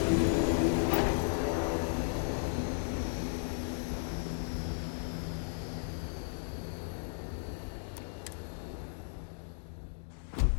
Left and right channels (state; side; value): silent; right; digital silence